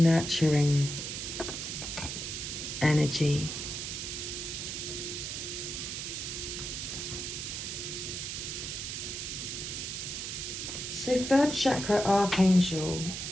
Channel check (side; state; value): right; noise; hiss, 5 dB below the sound